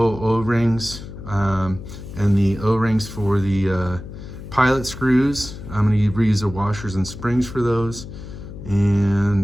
O-rings and the O-rings for the pilot screws. I'm going to reuse the washers and springs for those,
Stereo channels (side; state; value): left; noise; hum, 12 dB below the sound